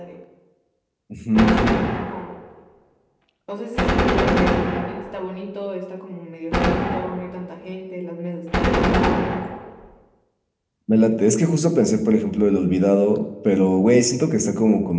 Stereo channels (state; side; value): identical; both; correlation 1.00